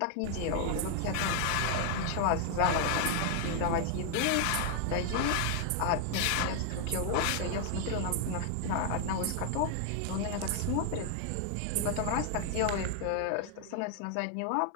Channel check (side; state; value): both; different; correlation 0.00